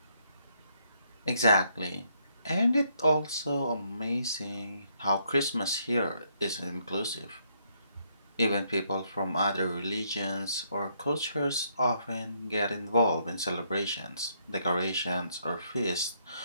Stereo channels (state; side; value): inverted; both; correlation -0.73